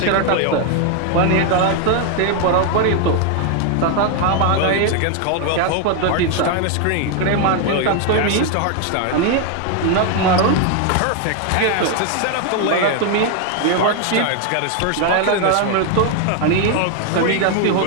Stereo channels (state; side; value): different; both; correlation 0.01